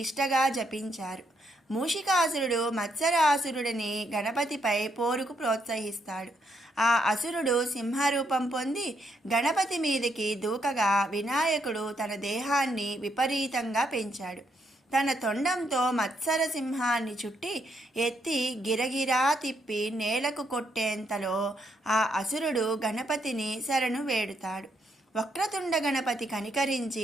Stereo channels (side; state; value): both; normal; correlation 0.76